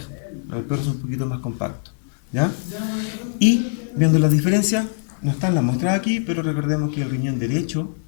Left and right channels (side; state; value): right; silent; 64 dB below the other